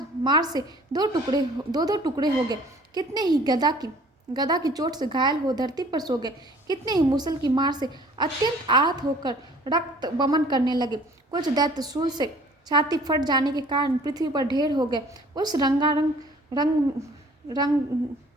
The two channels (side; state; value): both; normal; correlation 0.52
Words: मार से दो दो टुकड़े हो गए। कितने ही गदा की चोट से घायल हो धरती पर सो गए। कितने ही मुसल की मार से अत्यंत आहत होकर रक्त बमन करने लगे। कुछ दैत्य शूल से छाती फट जाने के कारण पृथ्वी पर ढेर हो गए। उस रंगागन